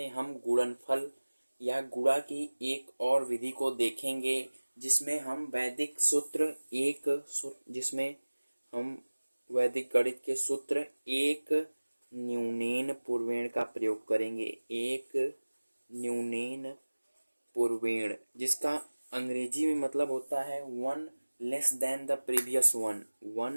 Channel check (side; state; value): both; inverted; correlation -1.00